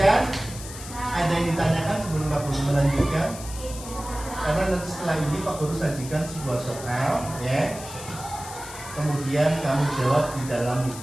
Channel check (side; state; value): left; noise; hiss, 13 dB below the sound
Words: Ada yang ditanyakan sebelum Pak Guru melanjutkan? Karena nanti setelah ini Pak Guru sajikan sebuah soal, ya. Kemudian kamu jawab di dalam